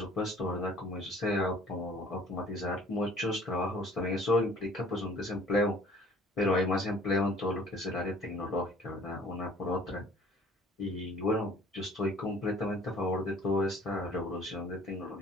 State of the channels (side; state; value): both; normal; correlation 0.52